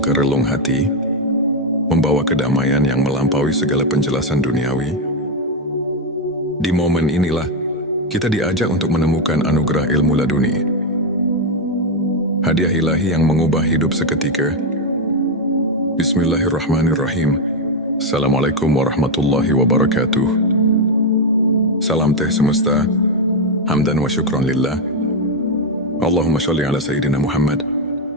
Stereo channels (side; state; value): both; normal; correlation 0.04